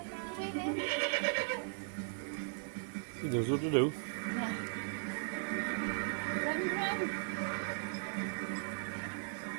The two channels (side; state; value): left; silent; digital silence